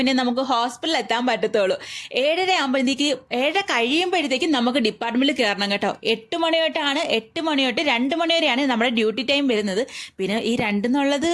നമുക്ക് ഹോസ്പിറ്റലിൽ എത്താൻ പറ്റത്തുള്ളൂ. 7:30 ആകുമ്പോഴത്തേക്ക് 7:30 കഴിയുമ്പോഴത്തേക്കും നമുക്ക് ഡിപ്പാർട്ട്മെന്റിൽ കയറണം കേട്ടോ. 8 മണി തൊട്ടാണ്, 8 മണി തൊട്ട് 2 മണി വരെയാണ് നമ്മുടെ ഡ്യൂട്ടി ടൈം വരുന്നത്. പിന്നെ ഈ 2 എന്നുള്ളത്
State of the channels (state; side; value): identical; both; correlation 1.00